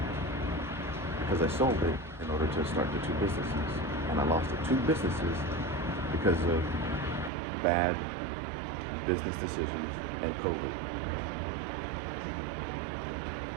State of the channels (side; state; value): left; drops out; at 7.3 s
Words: because I sold it in order to start the two businesses. And I lost the two businesses because of bad business decisions and COVID.